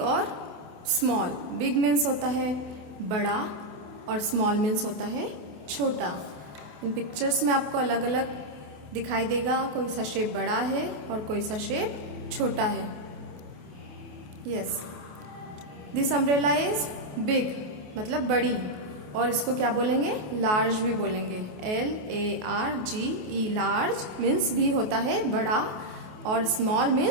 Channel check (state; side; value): late; left; 28 ms